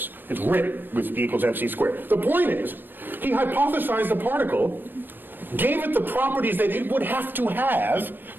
It's written with E equals MC squared. The point is, he hypothesized the particle, gave it the properties that it would have to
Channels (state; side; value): late; left; 0.094 ms